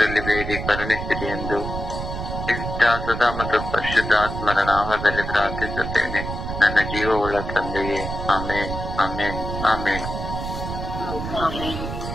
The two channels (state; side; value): noise; right; rumble, 6 dB below the sound